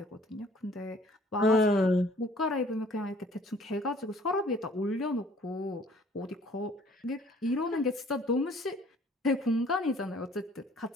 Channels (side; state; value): both; normal; correlation 0.56